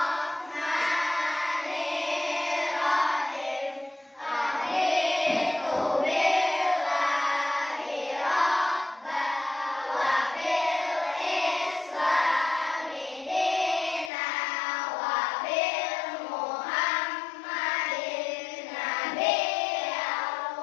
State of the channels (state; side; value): drops out; right; at 14.1 s